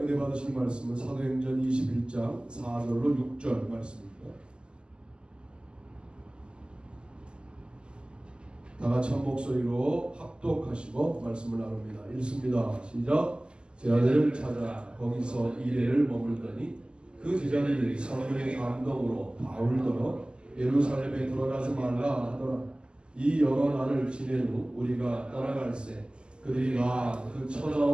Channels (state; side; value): late; left; 0.049 ms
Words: 받으실 말씀은 사도행전 21장 4절로 6절 말씀입니다. 다 같이 한 목소리로 합독하시고 말씀을 나눕니다. 읽습니다. 시작. 제자들을 찾아 거기서 이레를 머물더니 그 제자들이 성령의 감동으로 바울더러 예루살렘에 들어가지 말라 하더라. 이 여러 날을 지낸 후 우리가 떠나갈새 그들이 나 그